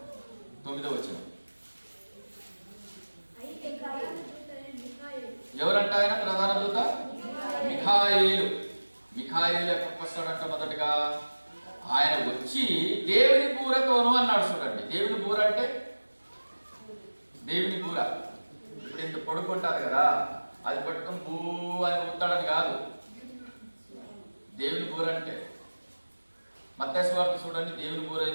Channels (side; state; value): both; inverted; correlation -1.00